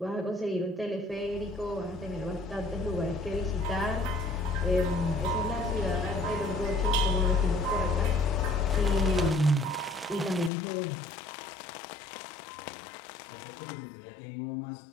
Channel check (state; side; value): drops out; right; at 10.5 s